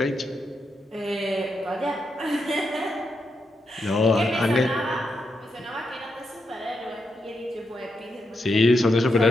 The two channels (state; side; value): normal; both; correlation 0.84